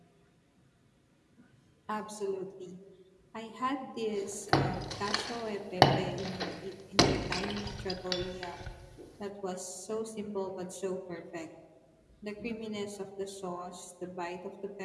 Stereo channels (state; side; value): identical; both; correlation 1.00